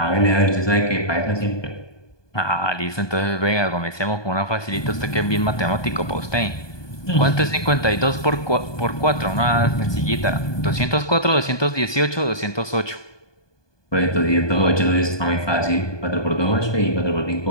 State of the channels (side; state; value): right; late; 1.2 ms